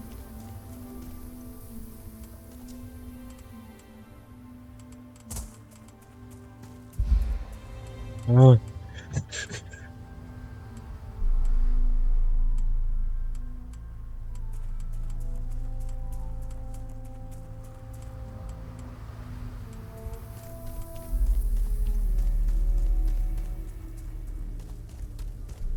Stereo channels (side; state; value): both; identical; correlation 1.00